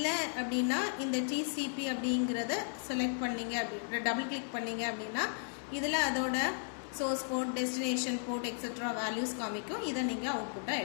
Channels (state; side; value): silent; right; digital silence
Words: அப்படின்னா இந்த TCP அப்படிங்கிறத செலக்ட் பண்ணிங்க அப்படி டபுள் கிளிக் பண்ணிங்க அப்படின்னா இதில் அதோட source port, destination port etcetera values காமிக்கும். இதை நீங்கள் அவுட்புட்டாக